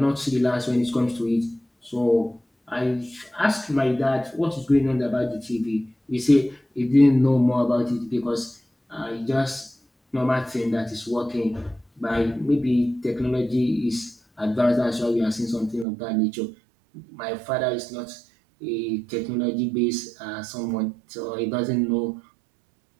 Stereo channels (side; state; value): left; drops out; at 15.9 s